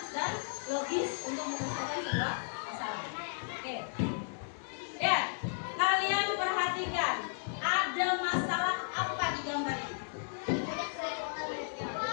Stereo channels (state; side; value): silent; right; digital silence